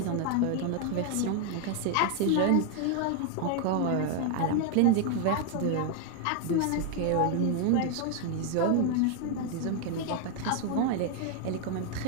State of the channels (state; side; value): different; both; correlation 0.00